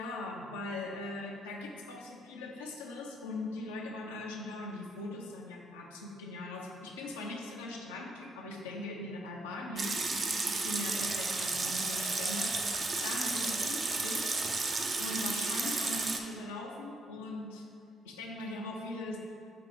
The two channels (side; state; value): both; normal; correlation 0.73